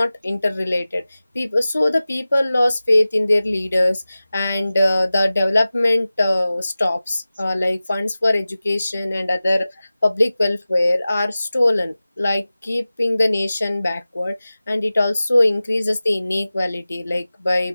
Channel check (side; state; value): both; inverted; correlation -0.97